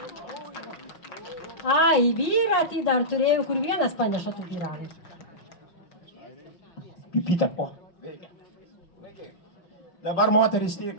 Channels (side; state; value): right; late; 5.5 ms